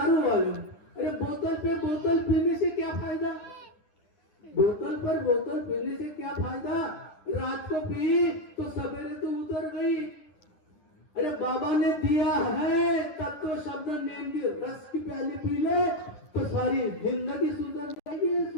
वाले, अरे बोतल पे बोतल पीने से क्या फायदा, बोतल पर बोतल पीने से क्या फायदा. रात को पी तो सवेरे तो उतर गई. अरे बाबा ने दिया है तत्व शब्द नियम की रस की प्याली पी ले तो सारी जिंदगी सुधर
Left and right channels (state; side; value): late; right; 10 ms